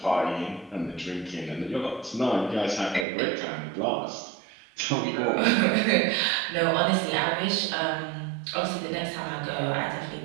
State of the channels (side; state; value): left; drops out; at 3.1 s